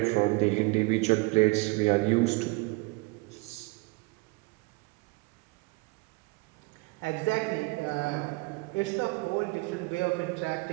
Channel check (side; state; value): left; quieter; 25.1 dB